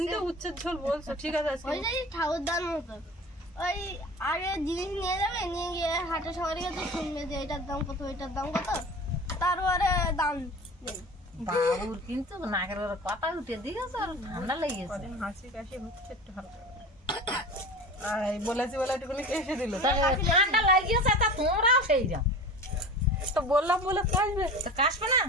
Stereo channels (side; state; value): both; normal; correlation 0.36